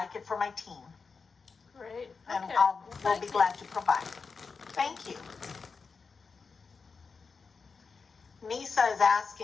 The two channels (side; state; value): right; quieter; 5.0 dB